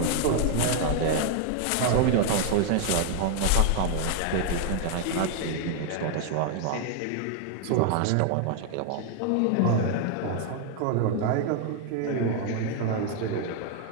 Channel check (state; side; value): different; both; correlation 0.00